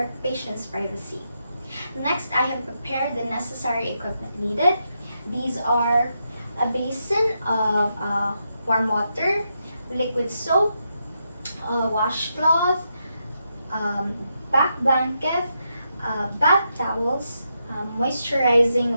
patient's privacy. Next, I have prepared the necessary equipment needed. These are a basin of warm water, liquid soap, washcloth, back blanket, bath towels,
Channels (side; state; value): both; inverted; correlation -0.83